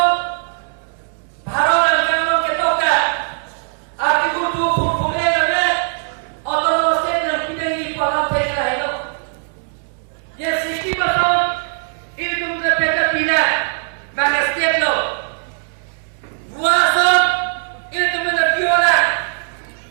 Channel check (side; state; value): left; silent; digital silence